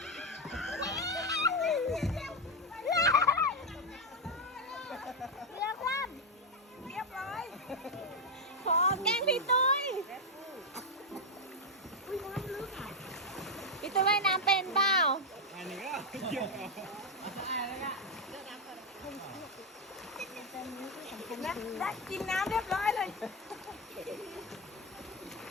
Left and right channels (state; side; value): normal; both; correlation 0.04